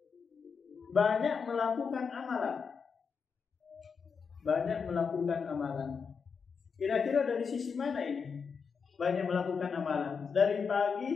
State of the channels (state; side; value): quieter; right; 5.8 dB